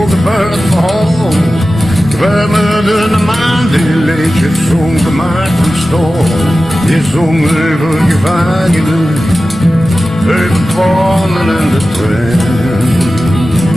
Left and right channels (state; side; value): normal; both; correlation 0.95